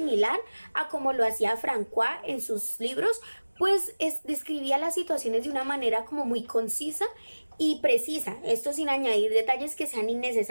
a como lo hacía François en sus libros, pues describía las situaciones de una manera como muy concisa y precisa, esto sin añadir detalles que sean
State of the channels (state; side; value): inverted; both; correlation -1.00